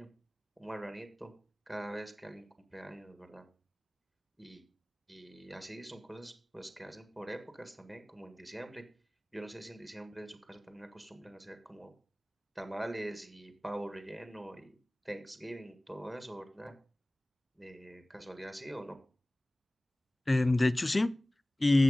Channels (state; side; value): normal; both; correlation 0.98